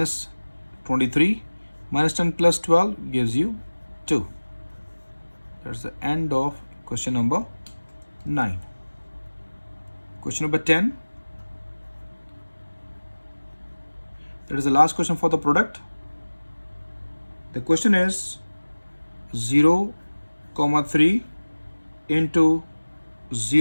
23. Minus 10 plus 12 gives you 2. That's the end of question number 9. Question number 10. That is the last question for the product. The question is 0, 3 into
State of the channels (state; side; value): inverted; both; correlation -1.00